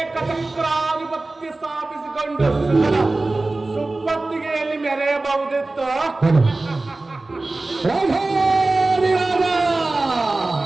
ಸ್ಥಾಪಿಸಿಕೊಂಡು ಸುಪ್ಪತ್ತಿಗೆಯಲ್ಲಿ ಮೆರೆಯಬಹುದಿತ್ತು.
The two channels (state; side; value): quieter; left; 3.1 dB